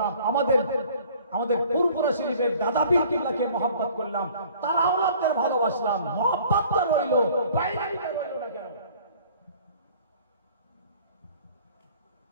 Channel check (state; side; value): inverted; both; correlation -0.52